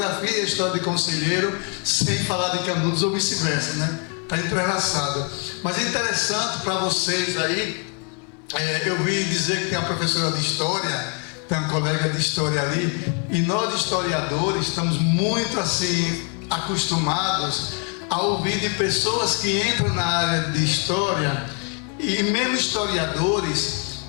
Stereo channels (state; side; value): quieter; right; 36.5 dB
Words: e a história de Conselheiro sem falar de Canudos ou vice-versa, Está entrelaçado. Mas é interessante para vocês aí, eu vi dizer que tem uma professora de História, tem um colega de História ali, e nós historiadores estamos muito assim acostumados a ouvir de pessoas que entram na área de História e mesmo historiadores